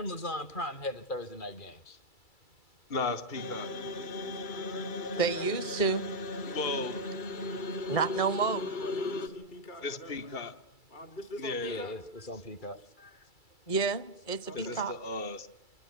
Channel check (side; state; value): right; late; 2.3 ms